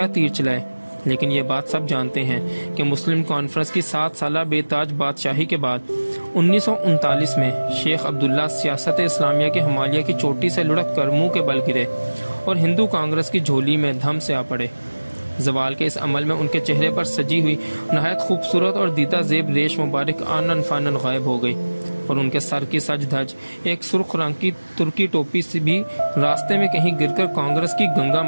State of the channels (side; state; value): both; inverted; correlation -1.00